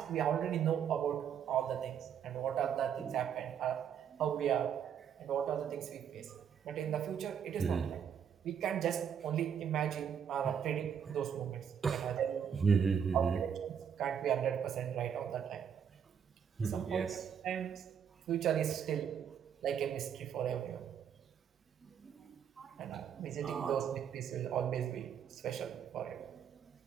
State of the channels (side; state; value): left; quieter; 8.1 dB